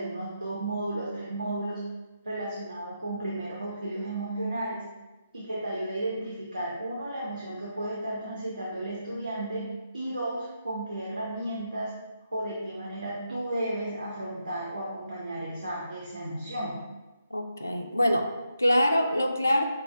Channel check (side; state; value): both; inverted; correlation -0.83